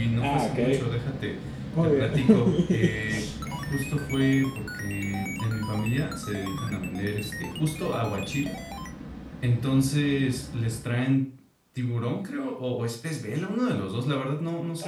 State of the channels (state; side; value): identical; both; correlation 1.00